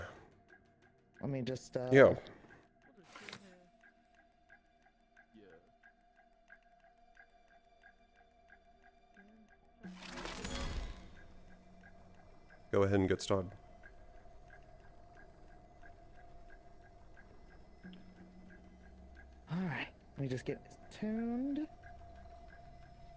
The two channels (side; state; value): both; identical; correlation 1.00